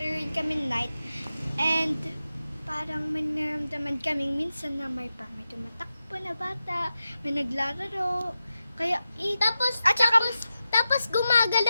rin kami night. And parang may naramdaman kaming minsan na may tumatakbo na bata. May naglalaro. Kaya, tapos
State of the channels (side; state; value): both; inverted; correlation -0.91